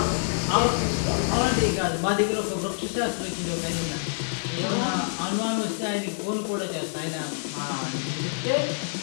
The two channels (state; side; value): silent; right; digital silence